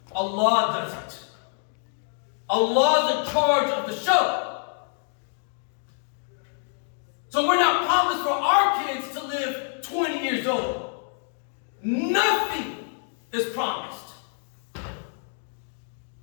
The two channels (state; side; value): silent; right; 58 dB below the other